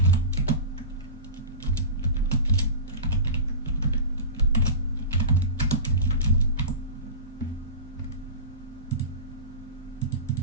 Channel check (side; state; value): both; inverted; correlation -0.30